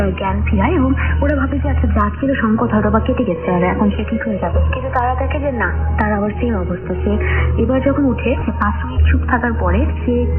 জ্ঞান ফিরায়, এবং ওরা ভাবে যে আচ্ছা যা ছিল সংকট হয়তো বা কেটে গেছে আর এখন সে ঠিক হয়ে যাবে। কিন্তু তারা দেখে যে না, তার আবার সেম অবস্থা। সে এবার যখন উঠে 5 মিনিট চুপ থাকার পরে সে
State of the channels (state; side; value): identical; both; correlation 1.00